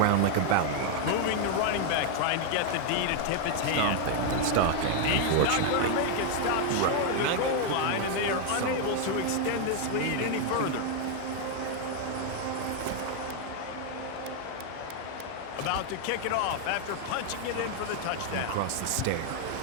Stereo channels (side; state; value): both; different; correlation 0.00